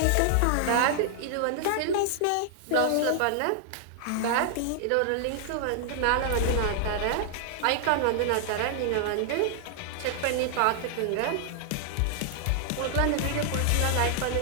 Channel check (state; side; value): different; both; correlation -0.01